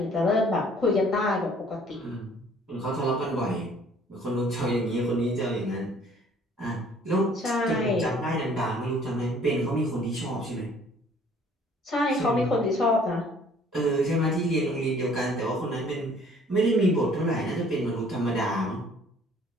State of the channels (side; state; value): both; normal; correlation 0.56